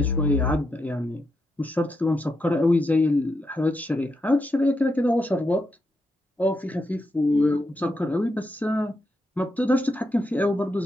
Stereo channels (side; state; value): both; normal; correlation 0.83